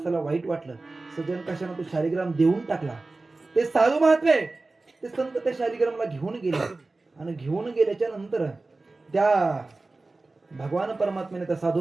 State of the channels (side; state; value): left; quieter; 3.3 dB